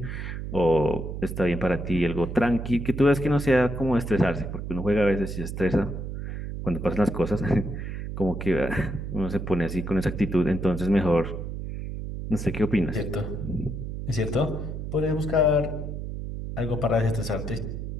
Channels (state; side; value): noise; right; hum, 6 dB below the sound